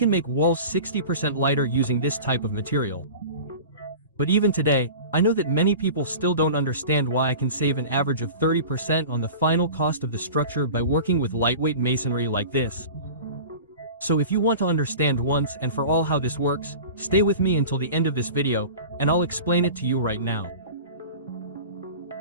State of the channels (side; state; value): both; inverted; correlation -0.37